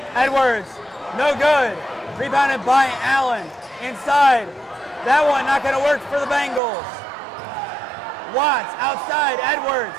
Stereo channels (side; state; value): left; drops out; at 6.6 s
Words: Edwards, no good. Rebounded by Allen. Inside. That one not going to work for the Bengals. Watts outside. Edwards.